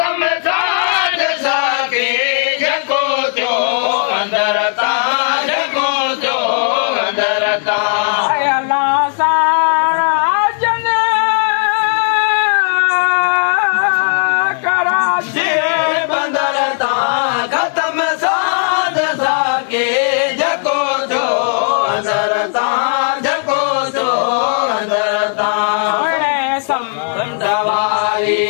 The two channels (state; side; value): silent; right; 63 dB below the other